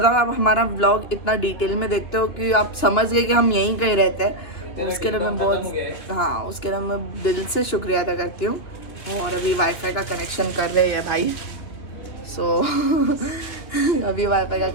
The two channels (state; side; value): late; right; 2.6 ms